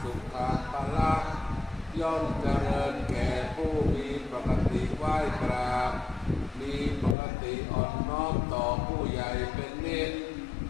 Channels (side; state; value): right; drops out; at 7.2 s